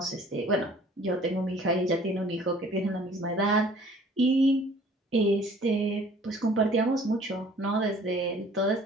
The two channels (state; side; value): normal; both; correlation 0.53